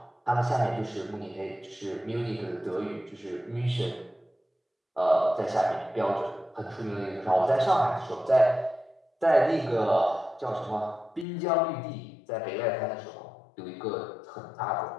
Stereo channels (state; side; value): drops out; right; at 11.2 s